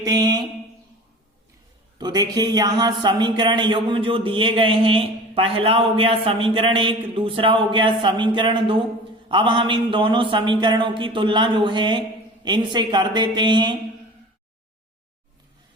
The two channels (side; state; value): both; normal; correlation 0.39